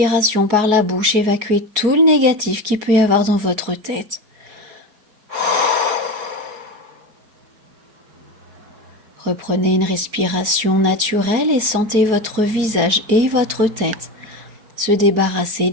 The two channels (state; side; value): late; left; 4.7 ms